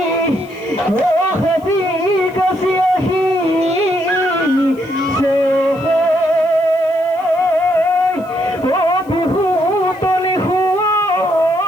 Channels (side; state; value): left; noise; hiss, 29 dB below the sound